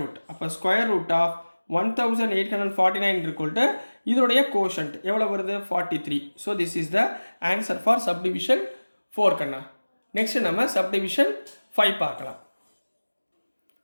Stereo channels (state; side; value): inverted; both; correlation -1.00